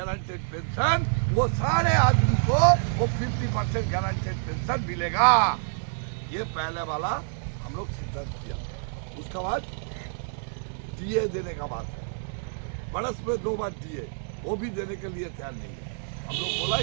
पेंशन, वो सारे आदमी को वो 50% गारंटेड पेंशन मिलेगा। ये पहले वाला हम लोग सिद्धांत किया। उसके बाद डीए देने का बात है, बरस में 2 बार डीए, वो भी देने के लिए तैयार नहीं है। हम लोग बोला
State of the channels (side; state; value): left; silent; 60 dB below the other